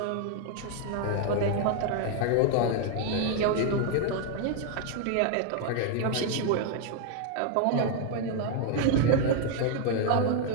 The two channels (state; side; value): different; both; correlation 0.00